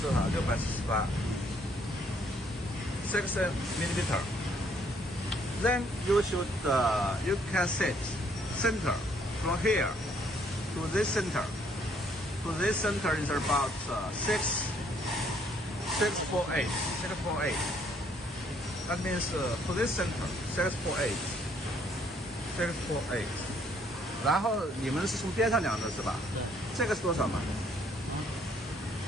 多少？648 6 millimeter. Then you should you can set center from here to this center. To this center is about 648. That means to this center 648. 648. 然后你们是从边上量的是吧？对。这个是多少嘛？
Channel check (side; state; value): both; normal; correlation 0.66